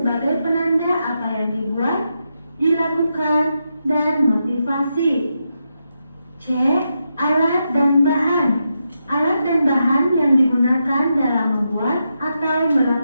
penanda apa yang dibuat, dilakukan, dan motivasi. C. Alat dan bahan. Alat dan bahan yang digunakan dalam membuat atau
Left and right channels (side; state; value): both; inverted; correlation -0.85